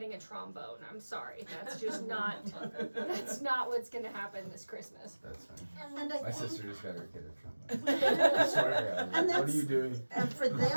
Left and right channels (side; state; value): both; inverted; correlation -1.00